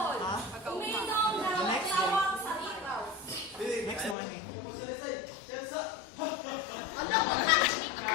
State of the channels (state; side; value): drops out; right; at 4.2 s